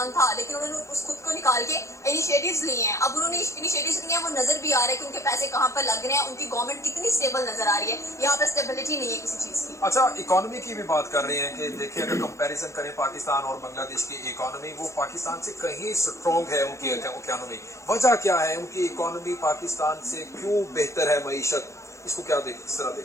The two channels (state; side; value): late; right; 0.14 ms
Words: था, लेकिन उन्होंने उस खुद को निकाल के इनिशिएटिव्स लिए हैं। अब उन्होंने इनिशिएटिव्स लिए हैं, वो नजर भी आ रहा है कि उनके पैसे कहाँ पर लग रहे हैं, उनकी गवर्नमेंट कितनी स्टेबल नजर आ रही है। यहाँ पर स्टेबिलिटी नहीं है किसी चीज की। अच्छा, इकोनॉमी की भी बात कर रहे हैं कि देखिए अगर कंपैरिजन करें पाकिस्तान और बांग्लादेश की इकोनॉमी, वो पाकिस्तान से कहीं स्ट्रॉन्ग है उनकी इकोनॉमी। वजह क्या है? उनकी इकोनॉमी पाकिस्तान से क्यों बेहतर है मईशत? इसको क्या देख किस तरह